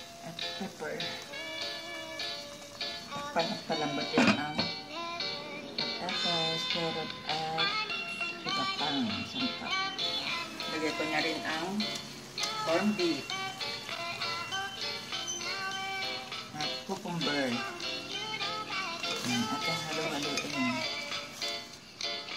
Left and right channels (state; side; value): identical; both; correlation 1.00